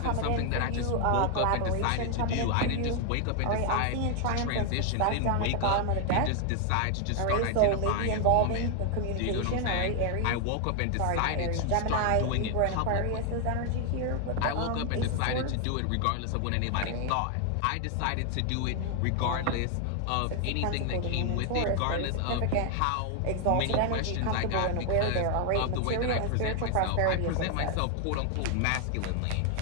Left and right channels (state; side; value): different; both; correlation 0.00